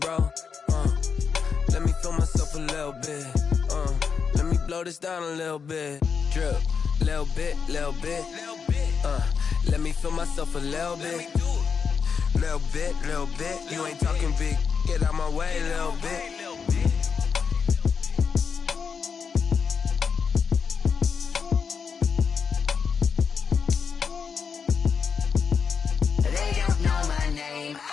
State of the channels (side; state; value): right; quieter; 6.1 dB